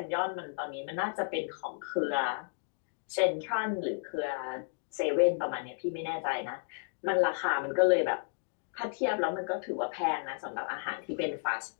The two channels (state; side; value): silent; right; digital silence